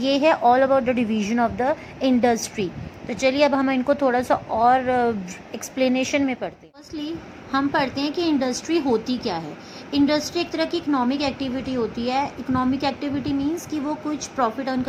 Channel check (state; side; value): identical; both; correlation 1.00